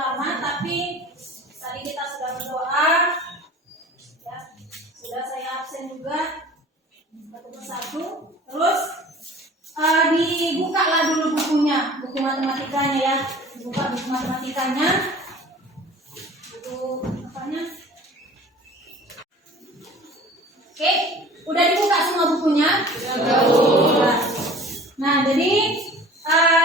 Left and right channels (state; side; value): normal; both; correlation 0.45